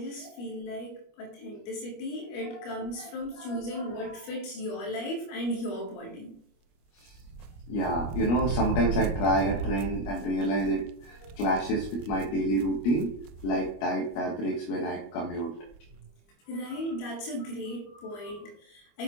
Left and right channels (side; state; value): right; late; 25 ms